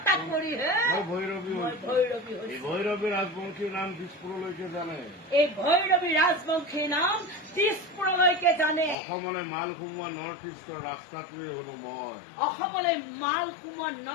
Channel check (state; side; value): drops out; right; at 9.0 s